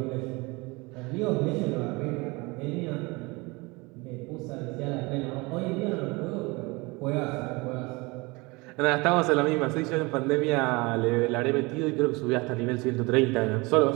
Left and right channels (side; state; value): left; quieter; 25.3 dB